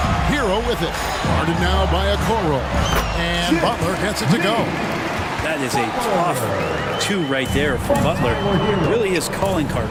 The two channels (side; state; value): both; identical; correlation 1.00